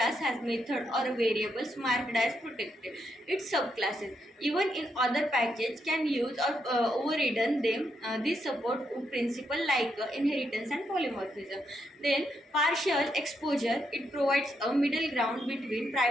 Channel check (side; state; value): both; normal; correlation 0.80